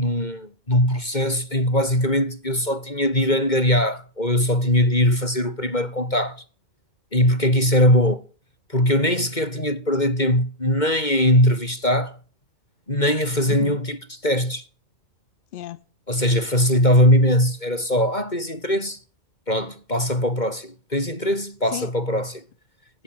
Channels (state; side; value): late; right; 2.2 ms